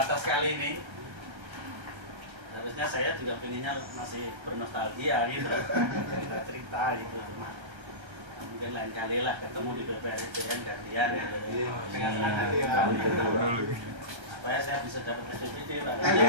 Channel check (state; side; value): late; left; 1.3 ms